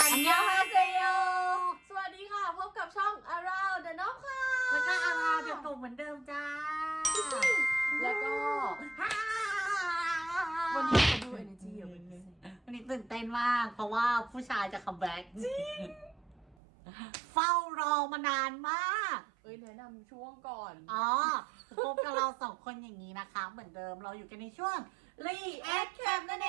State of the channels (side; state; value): left; drops out; at 16.6 s